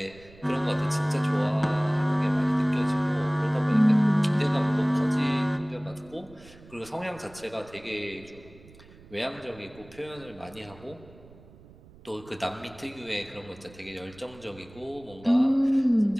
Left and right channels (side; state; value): right; noise; rumble, 22 dB below the sound